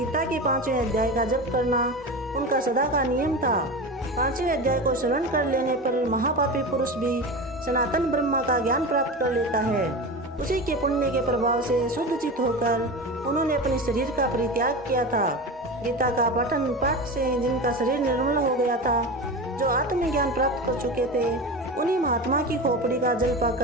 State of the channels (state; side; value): normal; both; correlation 0.26